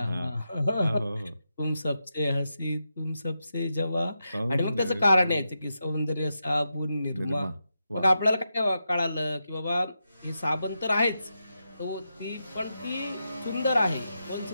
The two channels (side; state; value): both; inverted; correlation -0.87